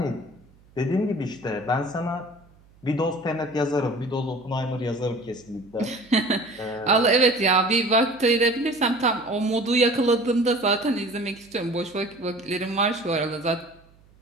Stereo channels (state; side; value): noise; right; hum, 29 dB below the sound